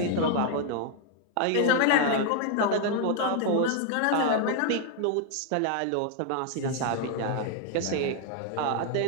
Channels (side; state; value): both; different; correlation 0.00